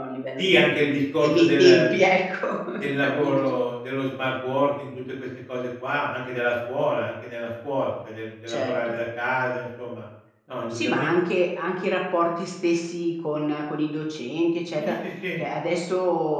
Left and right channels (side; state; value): both; identical; correlation 1.00